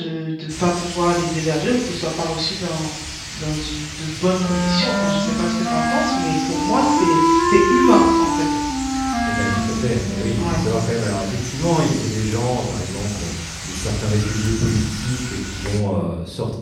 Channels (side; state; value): both; identical; correlation 1.00